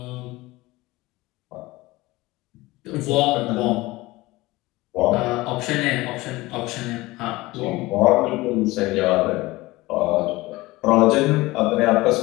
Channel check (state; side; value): quieter; right; 20.1 dB